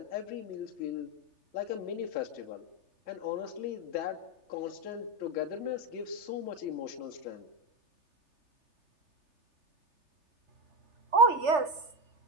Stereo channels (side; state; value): left; late; 3.3 ms